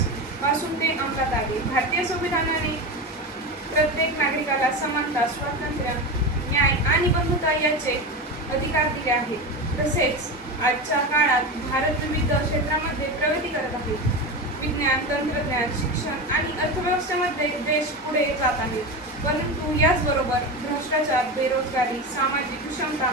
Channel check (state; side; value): normal; both; correlation 0.22